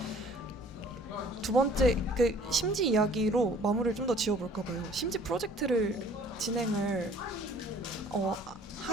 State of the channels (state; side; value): normal; both; correlation 0.53